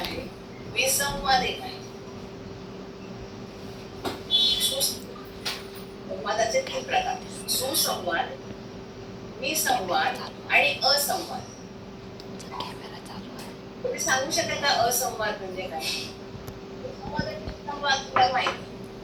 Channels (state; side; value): identical; both; correlation 1.00